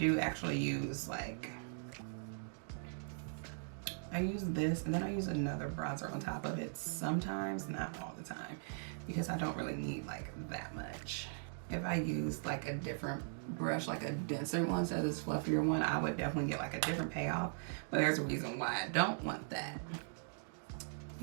actually use like, I use this and then I use another bronzer on top of it sometimes, not all the time, because I don't really need like that much. If I use like a different brush, like a denser one instead of this fluffier one, I would definitely get like a different payoff. But there's a reason why I don't want that.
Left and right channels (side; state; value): left; silent; digital silence